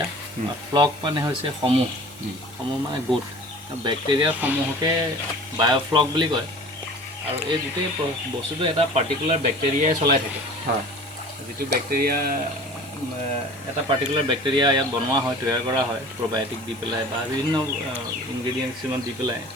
ফ্লক মানে হৈছে সমূহ মানে গোট। বেক্টেৰিয়াৰ সমূহকে বায়'ফ্লক বুলি কয়। আৰু এই গোটেই বস্তুটো এটা পাৰ্টিকুলাৰ বেক্টেৰিয়াই চলাই থাকে। যিটো বেক্টেৰিয়া এটা পাৰ্টিকুলাৰ বেক্টেৰিয়া ইয়াত বনোৱা হয়, তৈয়াৰ কৰা হয় প্ৰ'বায়'টিক দি পেলাই বা বিভিন্ন ইনগ্ৰেডিয়েণ্টছ কিছুমান দি পেলাই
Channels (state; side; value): normal; both; correlation 0.42